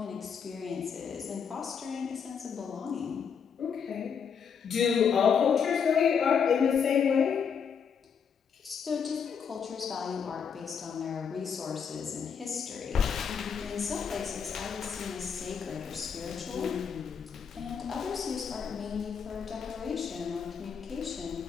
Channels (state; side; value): quieter; right; 6.8 dB